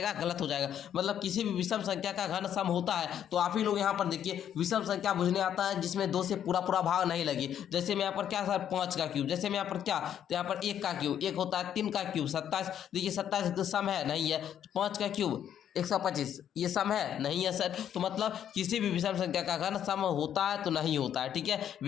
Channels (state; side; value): quieter; right; 9.7 dB